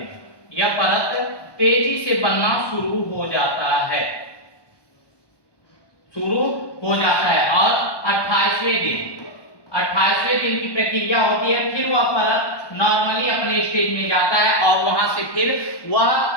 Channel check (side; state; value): right; late; 1.2 ms